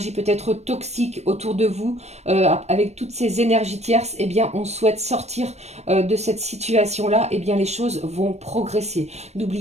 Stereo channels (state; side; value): late; left; 0.32 ms